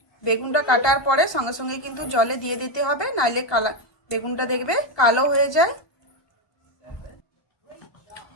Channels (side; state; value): right; late; 1.2 ms